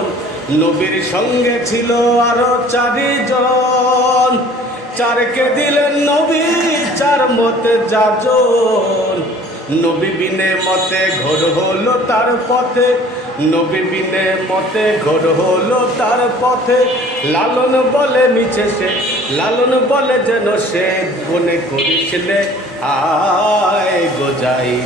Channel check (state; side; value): normal; both; correlation 0.50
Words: নবীর সঙ্গে ছিল আরো চারিজন, চারকে দিলেন নবী চার মতে যাজন। নবী বিনে মতে ঘোর হলো তার পথে, নবী বিনে মতে ঘোর হলো তার পথে। লালন বলে মিছে সে, লালন বলে যেন সে মনে করিসলে। আয় গো যাই